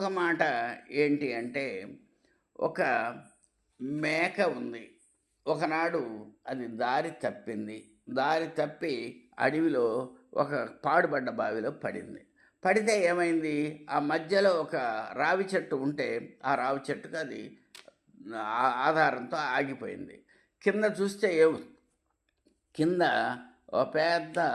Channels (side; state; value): both; identical; correlation 1.00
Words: మాట ఏంటి అంటే, ఒక మేక ఉంది. ఒకనాడు అది దారి తప్పింది. దారి తప్పి అడవిలో ఒక పాడుబడ్డ బావిలో పడింది. పడితే ఏమైంది, ఆ మధ్యలో ఒక రావి చెట్టు ఉంటే ఆ రావి చెట్టుకు అది ఆధారంతో ఆగిపోయింది. కింద చూస్తే కింద ఒక పెద్ద